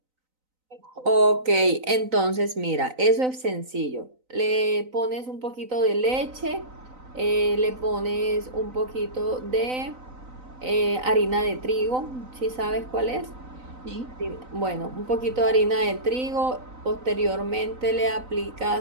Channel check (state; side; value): late; left; 3.9 ms